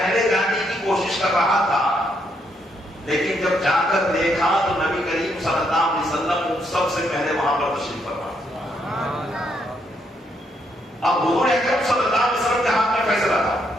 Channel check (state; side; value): normal; both; correlation 0.75